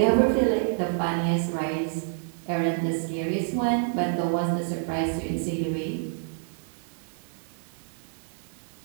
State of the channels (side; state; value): left; silent; 60 dB below the other